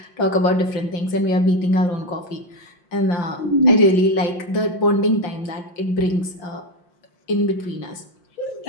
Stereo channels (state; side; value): late; right; 5.7 ms